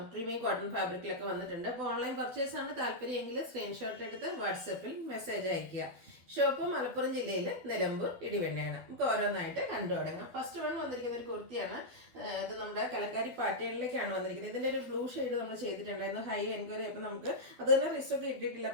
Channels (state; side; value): late; left; 12 ms